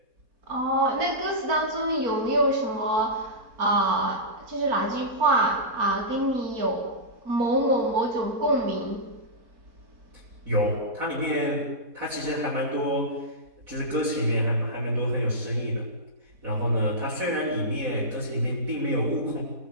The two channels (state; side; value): late; left; 4.2 ms